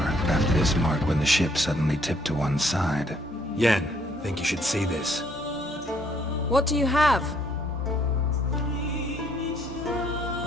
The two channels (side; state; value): both; normal; correlation 0.66